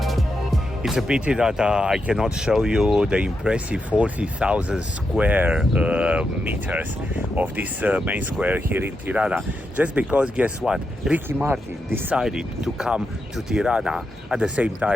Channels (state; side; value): normal; both; correlation 0.85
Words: It's a pity that I cannot show you the impressive 40,000 square meters of this main square here in Tirana. Just because, guess what? Ricky Martin decided to come to Tirana at the same